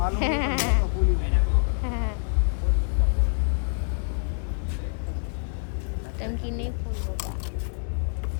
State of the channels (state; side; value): silent; right; 60 dB below the other